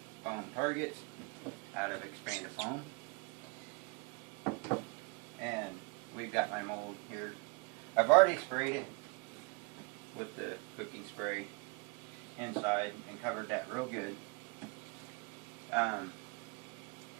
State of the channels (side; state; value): left; quieter; 30.8 dB